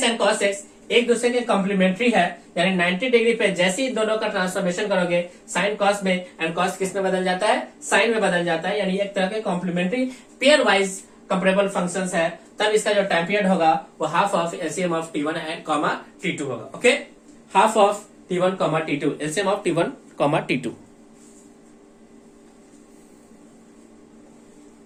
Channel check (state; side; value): identical; both; correlation 1.00